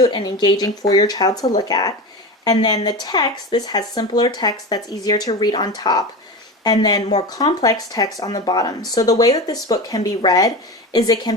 and engaging for your child to look at. And then the text, this has simpler text that's easier to read on top, and then more complex text on the bottom. So the way that this book can be read is it can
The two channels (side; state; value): both; normal; correlation 0.25